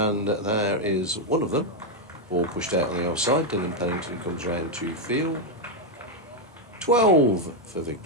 there is one of them. Ball pushed out on the offside. Dylan Pennington comes round to field. 12 for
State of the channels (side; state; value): both; normal; correlation 0.02